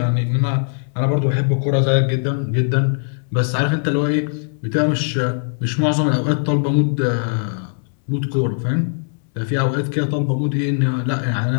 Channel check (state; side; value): silent; right; 66 dB below the other